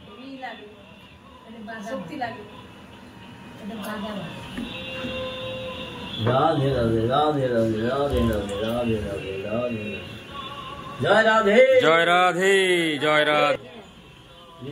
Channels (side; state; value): both; identical; correlation 1.00